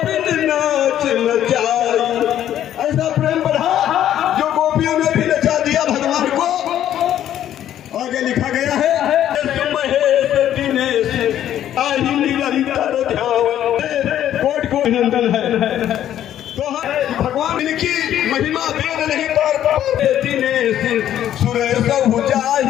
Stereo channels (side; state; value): right; quieter; 11.3 dB